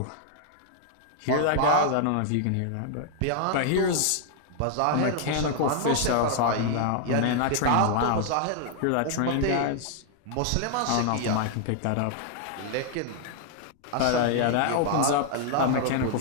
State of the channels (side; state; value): both; different; correlation 0.00